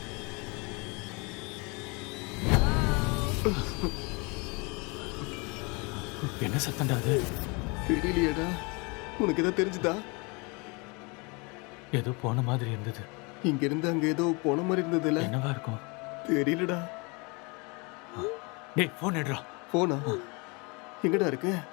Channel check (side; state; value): right; quieter; 29.4 dB